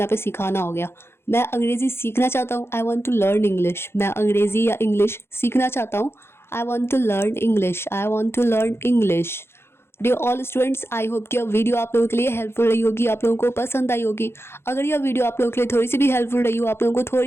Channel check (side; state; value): right; late; 0.12 ms